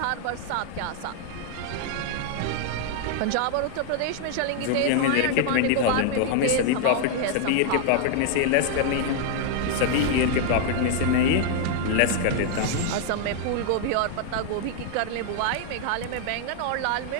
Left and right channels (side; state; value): both; different; correlation 0.00